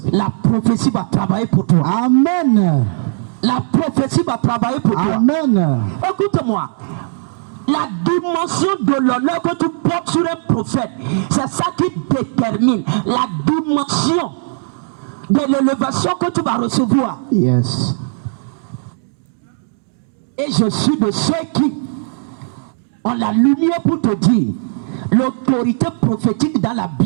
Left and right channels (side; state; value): left; silent; digital silence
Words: va travailler pour toi. Amen. La prophétie va travailler pour toi. Amen. Écoute-moi. La dimension de l'honneur que tu portes sur un prophète, c'est ça qui détermine la dimension de l'élévation que tu vas recevoir. Yes. Et je suis de ceux qui ont la lumière pour te dire, l'autorité prophétique dans la